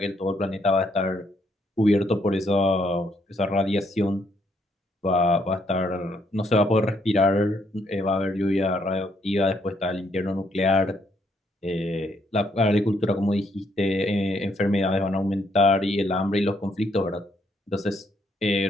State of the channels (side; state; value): both; normal; correlation 0.72